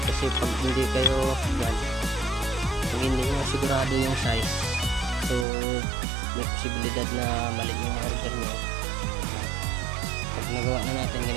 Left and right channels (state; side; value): drops out; left; at 5.5 s